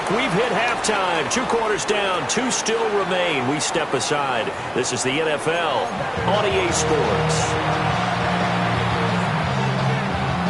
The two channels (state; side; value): identical; both; correlation 1.00